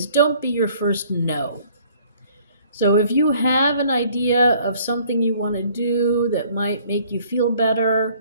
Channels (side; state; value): both; inverted; correlation -0.58